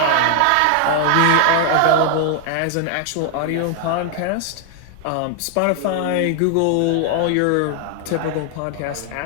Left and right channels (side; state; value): both; different; correlation 0.00